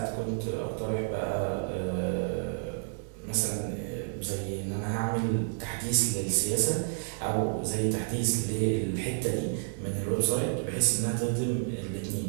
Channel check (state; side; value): silent; left; digital silence